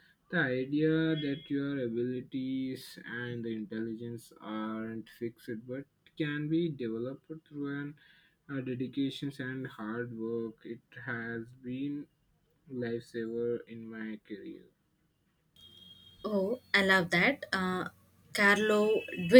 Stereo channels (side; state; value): both; identical; correlation 1.00